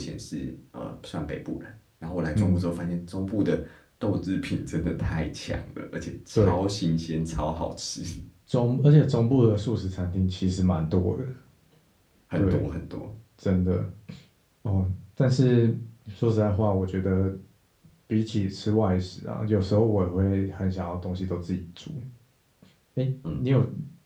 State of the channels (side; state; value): both; identical; correlation 1.00